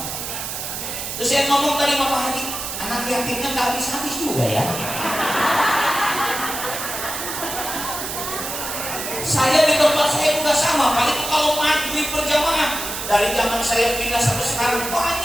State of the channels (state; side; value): noise; right; hiss, 5 dB below the sound